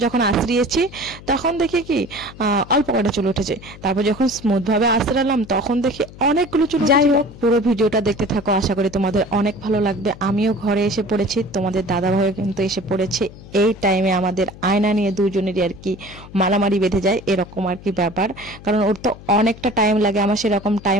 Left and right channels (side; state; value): left; noise; hum, 18 dB below the sound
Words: যখন আশ্রিয়েছি তখন দেখি কি অল্প কটা চুল উঠেছে। তারপর যখন স্মুথ ভাবে আশ্রালাম তখন দেখি অনেকগুলো চুল। যাই হোক, পুরো ভিডিওটা দেখতে থাকো, আশা করি তোমাদের অনেক ভালো লাগবে। আমিও ঘরে এসে পড়েছি, তোমাদের দাদা ভাইও কিন্তু এসে পড়েছে। এই টাইমে আমাদের আয়না নিয়ে দুজনেরই আর কি মারামারি বেঁধে যায়, এরকম আর কি ব্যাপার। কারণ ওর তো অনেকটা টাইম লাগে, আমার সেরকম